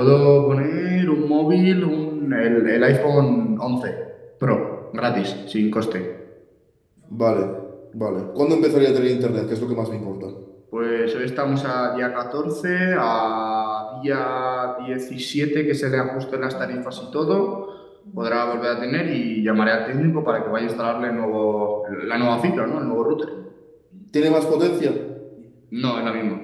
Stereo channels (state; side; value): identical; both; correlation 1.00